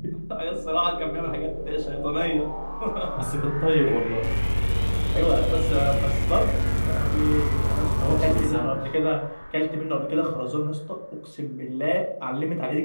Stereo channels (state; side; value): inverted; both; correlation -1.00